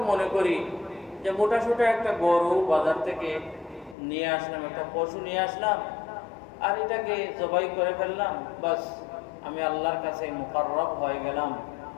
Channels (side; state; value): right; drops out; at 4.0 s